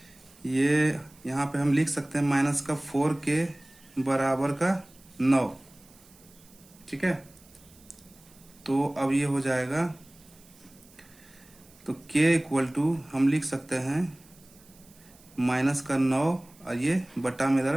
ये, यहाँ पे हम लिख सकते हैं माइनस का 4k बराबर का 9, ठीक है। तो अब ये हो जाएगा, तो k इक्वल टू हम लिख सकते हैं माइनस का 9 और ये बटा में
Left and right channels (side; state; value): right; noise; hiss, 26 dB below the sound